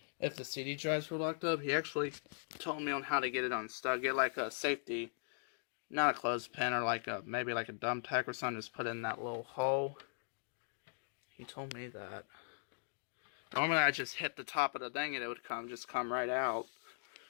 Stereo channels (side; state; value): right; silent; digital silence